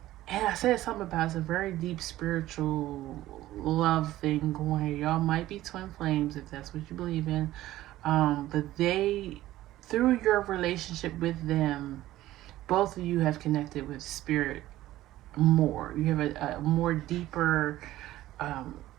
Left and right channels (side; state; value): left; quieter; 15.2 dB